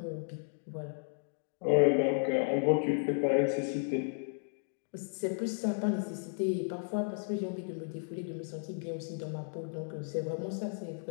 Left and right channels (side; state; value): right; silent; digital silence